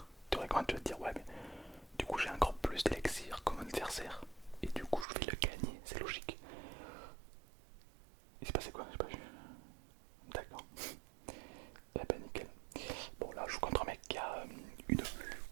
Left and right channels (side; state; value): left; drops out; at 5.1 s